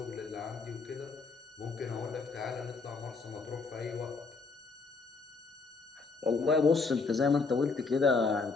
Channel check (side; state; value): right; quieter; 4.4 dB